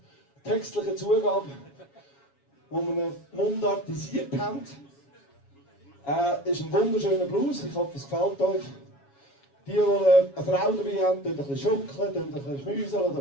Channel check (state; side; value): late; right; 7.2 ms